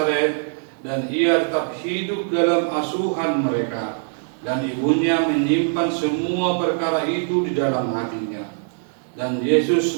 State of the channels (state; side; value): silent; left; digital silence